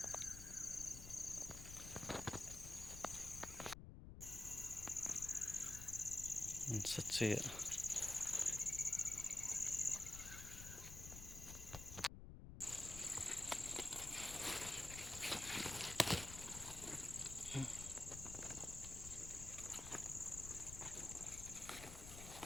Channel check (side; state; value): left; noise; rumble, 10 dB below the sound